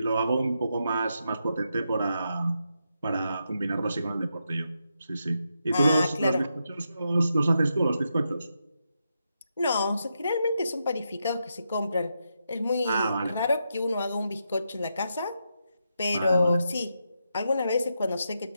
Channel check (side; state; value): both; inverted; correlation -0.84